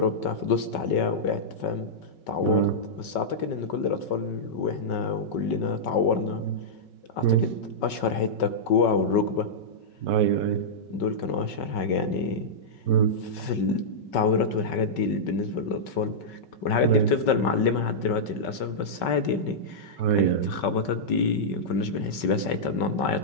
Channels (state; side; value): late; right; 5.3 ms